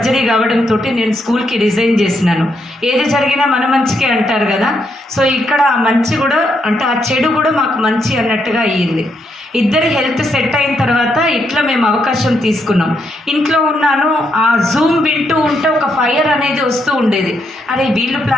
కావడంతో నేను స్కూల్కి రిజైన్ చేసినాను. ఏది జరిగినా మన మంచికే అంటారు కదా. సో ఇక్కడ ఆ మంచి కూడా అంటే ఆ చెడు కూడా మాకు మంచి అన్నట్టుగా అయ్యింది. ఇద్దరి హెల్త్ సెట్ అయిన తర్వాత ఇట్లా మేము అవకాశం తీసుకున్నాం. ఇంట్లో ఉన్నాను, ఆ జూమ్ వింటూ ఉంటే ఒక ఫైర్ అనేది వస్తూ ఉండేది. అరే వీళ్ళు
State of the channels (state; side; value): normal; both; correlation 0.78